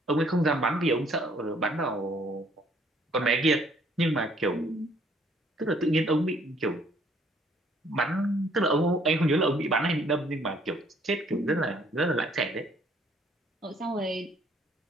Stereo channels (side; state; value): both; normal; correlation 0.63